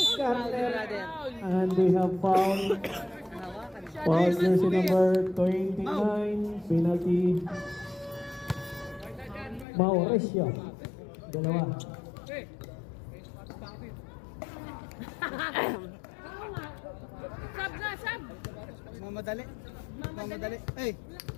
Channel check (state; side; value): drops out; right; at 9.7 s